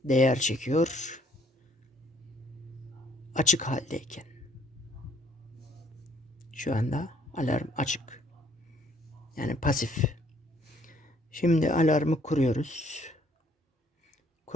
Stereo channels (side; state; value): both; normal; correlation 0.63